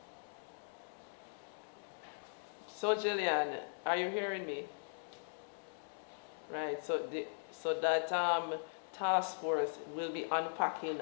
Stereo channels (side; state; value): right; silent; digital silence